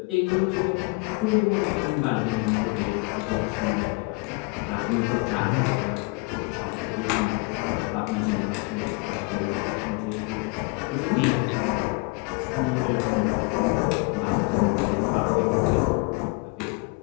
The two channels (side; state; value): right; quieter; 29.8 dB